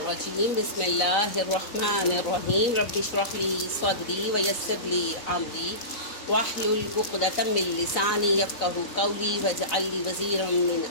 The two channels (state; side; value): late; right; 4.0 ms